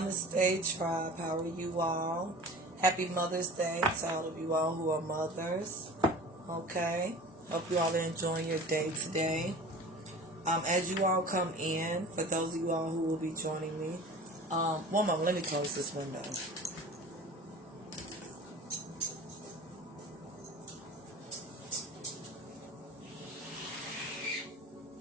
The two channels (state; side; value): normal; both; correlation 0.39